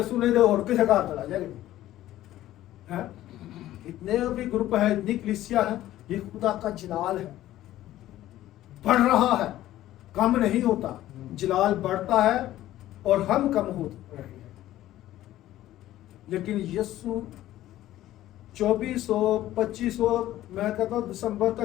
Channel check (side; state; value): right; quieter; 14.2 dB